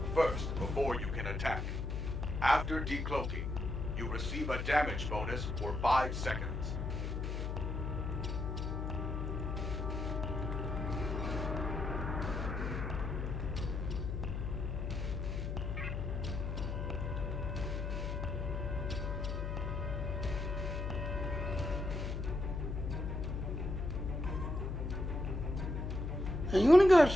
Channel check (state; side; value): noise; left; hum, 2 dB below the sound